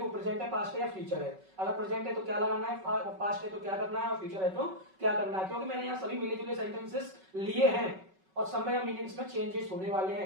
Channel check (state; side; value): late; left; 5.3 ms